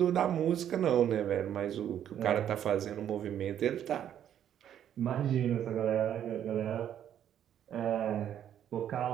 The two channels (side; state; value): left; quieter; 10.1 dB